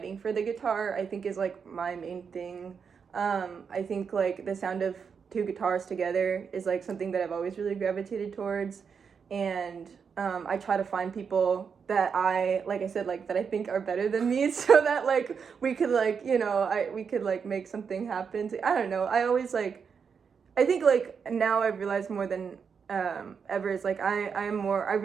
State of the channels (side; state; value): left; quieter; 6.3 dB